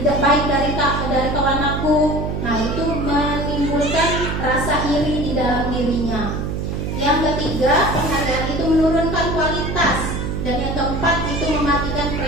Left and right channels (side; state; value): right; noise; hum, 3 dB below the sound